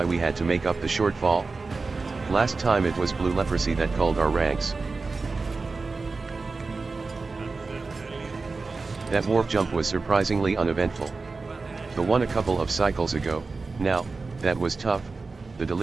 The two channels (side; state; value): left; quieter; 4.0 dB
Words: we had to make up the shortfall? Last time it was blue leprosy that culled our ranks. That warp jump was surprisingly uneventful. The one a couple of cycles ago, now, that was tough. The